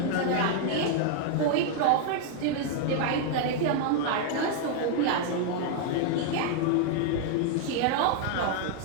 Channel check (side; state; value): both; different; correlation 0.00